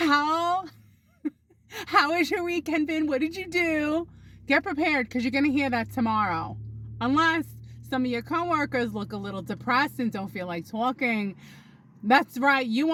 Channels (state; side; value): identical; both; correlation 1.00